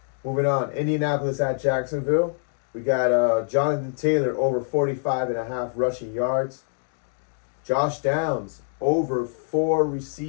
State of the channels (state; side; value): silent; right; digital silence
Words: Moving on, Indianapolis at Jacksonville. We got Jonathan Taylor over 45.5 rushing yards. Josh Downs over 4